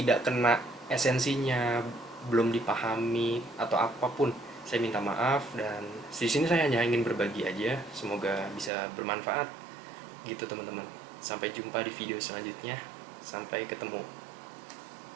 kena esensinya, belum dipahami atau apapun. Saya minta maaf, dan di sini saya hanya ingin berbagi aja. Semoga bisa bermanfaat gitu teman-teman. Sampai jumpa di video selanjutnya. Sampai ketemu.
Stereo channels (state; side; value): drops out; left; at 8.7 s